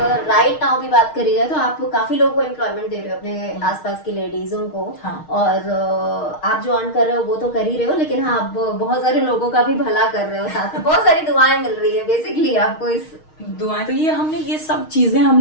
राइट नाउ भी बात करी जाए तो आप काफी लोगों को एम्प्लॉयमेंट दे रहे हो, अपने आसपास की लेडीजों को। और आप जो अर्न कर रहे हो वो तो कर ही रहे हो, लेकिन हाँ, आप बहुत सारे लोगों का भी भला कर रहे हो, साथ में बहुत सारी दुआएं मिल रही है बेसिकली आपको। इस दुआएं तो ये सब चीजें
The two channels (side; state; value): right; late; 6.4 ms